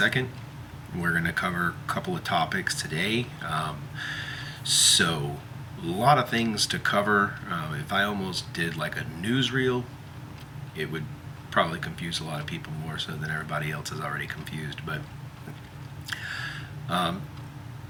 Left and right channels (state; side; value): identical; both; correlation 1.00